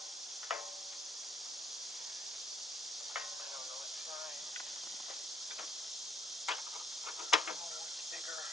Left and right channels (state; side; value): normal; both; correlation 0.65